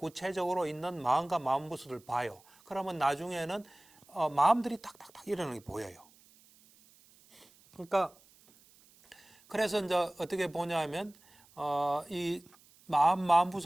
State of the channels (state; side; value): noise; right; hiss, 28 dB below the sound